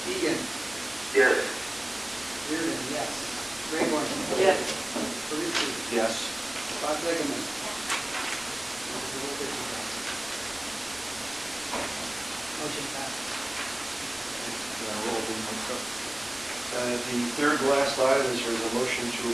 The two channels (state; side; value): noise; left; rumble, 27 dB below the sound